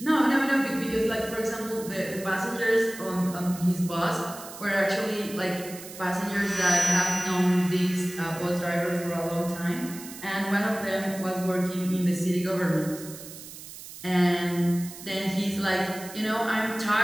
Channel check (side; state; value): right; noise; hiss, 14 dB below the sound